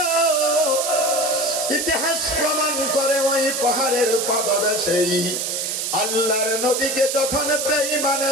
ইতিহাস প্রমাণ করে ওই পাহাড়ের পাদদেশেই আল্লাহর নবীকে যখন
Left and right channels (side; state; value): right; noise; hiss, 1 dB below the sound